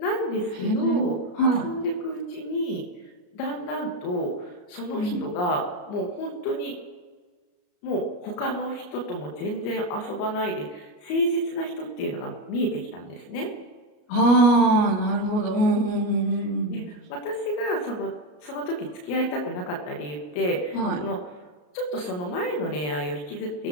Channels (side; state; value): right; late; 34 ms